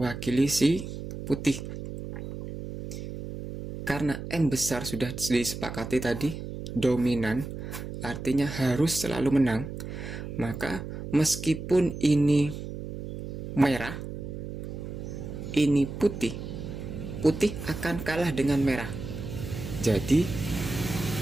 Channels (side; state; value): right; noise; hum, 8 dB below the sound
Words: si putih. Karena M besar sudah disepakati tadi dominan, artinya harus selalu menang, maka meskipun ini merah, ini putih akan kalah dengan merah. Jadi